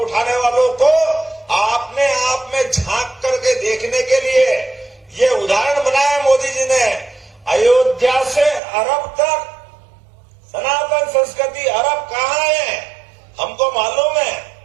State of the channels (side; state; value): left; drops out; at 8.6 s